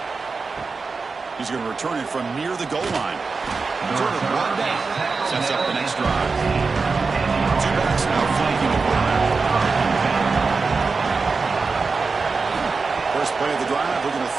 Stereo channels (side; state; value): left; quieter; 4.4 dB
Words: He's going to return it from near the goal line. Return it brought down. Sets up the next drive. 2 backs now flanking the quarterback. First play of the drive, we're going to